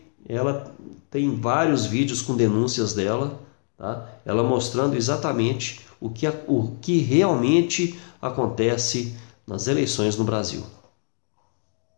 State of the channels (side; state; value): right; silent; 55 dB below the other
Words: ela tem vários vídeos com denúncias dela, tá? Ela mostrando exatamente o que realmente acontece nas eleições no Brasil.